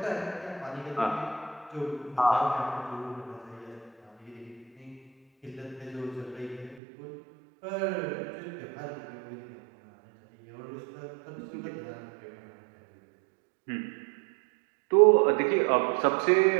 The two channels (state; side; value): drops out; left; at 6.8 s